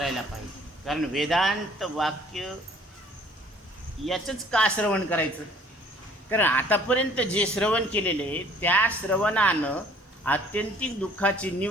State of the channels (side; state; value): both; normal; correlation 0.55